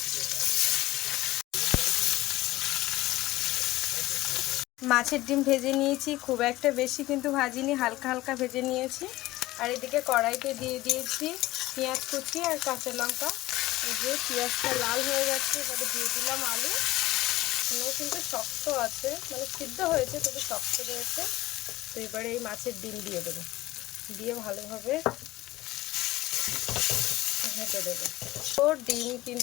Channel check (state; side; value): quieter; right; 17.5 dB